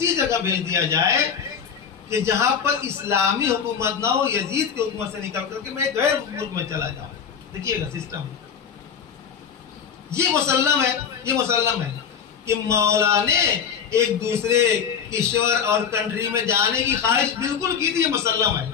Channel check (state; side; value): quieter; right; 7.2 dB